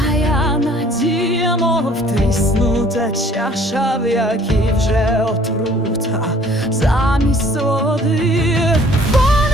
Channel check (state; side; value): normal; both; correlation 0.56